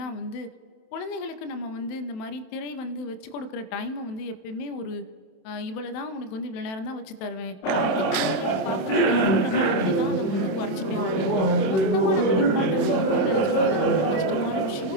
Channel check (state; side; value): late; right; 26 ms